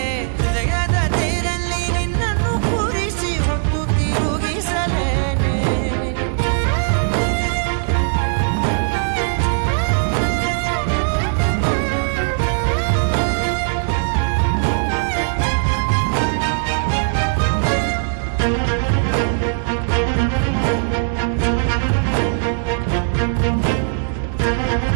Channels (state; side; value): silent; left; 60 dB below the other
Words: ಹೃದಯದ ತೇರಲ್ಲಿ ನಿನ್ನನ್ನು ಕೂರಿಸಿ ಹೊತ್ತು ತಿರುಗಿಸಲೇನೆ.